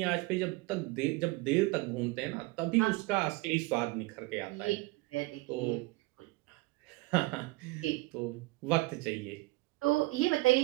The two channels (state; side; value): quieter; left; 21.8 dB